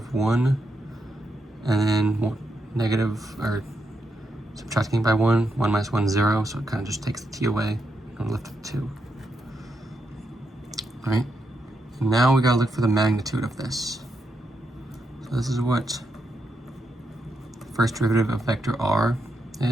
1, and then negative, or subtracting by 1. 1 minus 1 is 0, so it kind of just takes the t away, and we're left with 2. Alright, and now we gotta look for the magnitude of this. So this is what the first derivative of vector r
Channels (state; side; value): normal; both; correlation 0.82